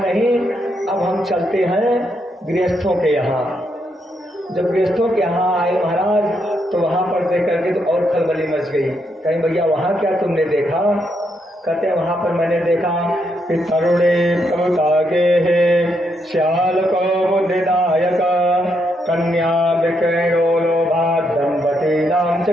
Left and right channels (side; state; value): both; normal; correlation 0.78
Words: अब हम चलते हैं गृहस्थों के यहाँ। जब गृहस्थों के यहाँ आए महाराज तो वहां पर देख करके तो और खलबली मच गई। कहीं भैया वहां क्या तुमने देखा, कहते हैं वहां पर मैंने देखा कि तरुणे प्रभुतागे है श्याल को बुद्धिदायक कन्या विक्रयो लोभात दंपति नाम